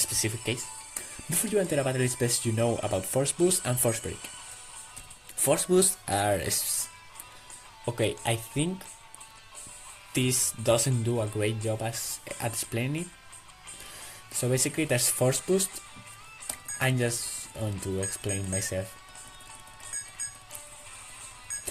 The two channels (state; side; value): identical; both; correlation 1.00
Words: case. Before you enter a battle, it's best you know about force boost and force break. Force boosts are okay. I think this doesn't do a great job at explaining it. So basically, there's force boost. I'm just going to explain myself.